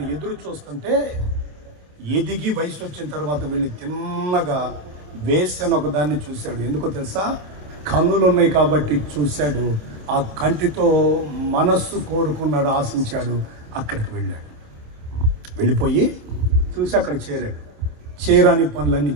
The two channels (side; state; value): left; late; 27 ms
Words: ఎదురు చూస్తుంటే ఎదిగి వయసు వచ్చిన తర్వాత వెళ్ళి తిన్నగా వేసన ఒకదాన్ని చూశాడు. ఎందుకో తెలుసా? కన్నులు ఉన్నాయి కాబట్టి చూశాడు. ఆ కంటితో మనస్సు కోరుకున్నాడు, ఆశించాడు. అక్కడికి వెళ్ళాడు. వెళ్ళిపోయి చూసి అక్కడ చేరాడు. చేరాని పనులన్నీ